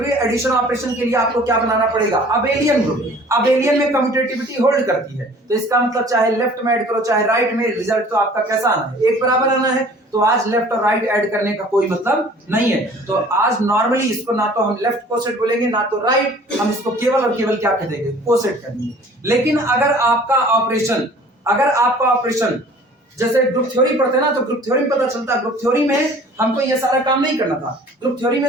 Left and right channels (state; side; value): normal; both; correlation 0.50